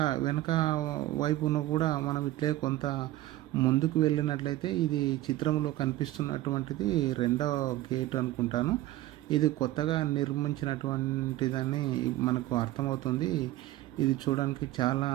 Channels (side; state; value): left; quieter; 15.7 dB